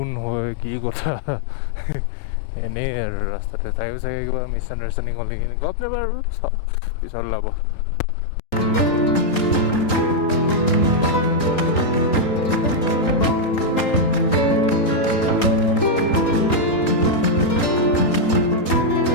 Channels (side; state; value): right; late; 3.8 ms